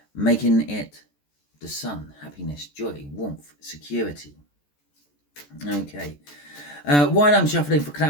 making it the sun, happiness, joy, warmth, security. Okay, while I'm shuffling for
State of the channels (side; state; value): right; late; 14 ms